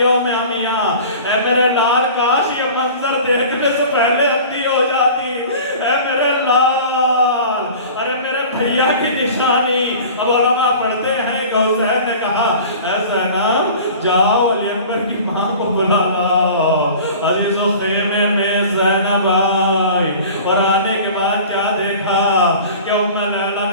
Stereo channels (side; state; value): both; inverted; correlation -0.41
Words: عمیاں, اے میرے لال کاش یہ منظر دیکھنے سے پہلے اندھی ہو جاتی. اے میرے لال, ارے میرے بھیا کی نشانی. اب علماء پڑھتے ہیں کہ حسین نے کہا اے زینب جاؤ علی اکبر کی ماں کو بلا لاؤ. عزیزو خیمے میں زینب آئی, اور آنے کے بعد کیا دیکھا کہ ام لیلا